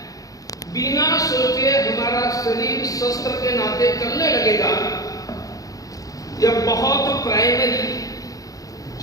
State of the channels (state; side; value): late; right; 0.17 ms